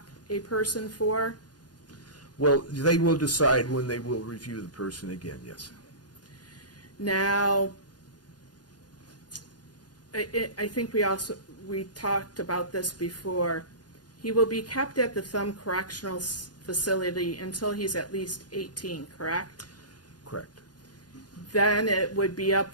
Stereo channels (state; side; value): late; right; 0.69 ms